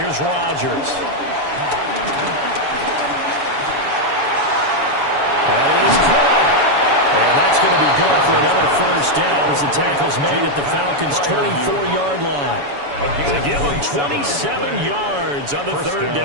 Rodgers. That is caught. And that's going to be good for another first down as the tackle's made at the Falcons' 24-yard line. To give them 27 yards on the 3rd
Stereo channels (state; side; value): late; left; 7.0 ms